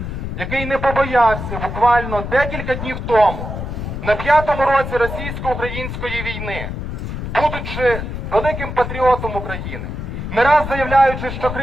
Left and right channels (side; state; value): left; noise; rumble, 6 dB below the sound